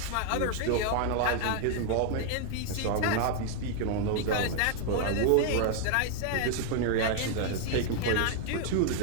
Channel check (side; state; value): both; different; correlation 0.00